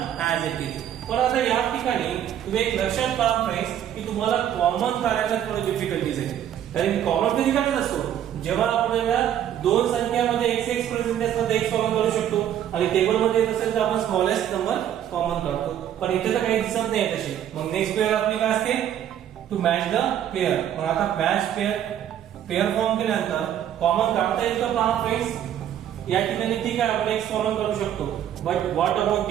as it is. पण आता या ठिकाणी तुम्ही एक लक्षात पहा फ्रेंड्स की तुम्हाला कॉमन काढायला थोडं डिफिकल्टीज आहे. कारण कॉमन कधी काढत असतो जेव्हा आपल्याला दोन संख्यामध्ये x प्रेझेंट असतात x कॉमन करू शकतो, आणि टेबल मध्ये येत असेल तर आपण स्मॉलेस्ट नंबर कॉमन काढतो. पण इथे तर काही दिसत नाही तसे. मग नेक्स्ट पेअर आपली काय असते, टू मॅच द पेअर. मग आता मॅच पेअर फॉर्म केल्यानंतर कॉमन काढता येईल का पहा फ्रेंड्स. या ठिकाणी ठीक आहे आपण x कॉमन करू शकतो, बट व्हॉट अबाउट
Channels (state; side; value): quieter; left; 10.4 dB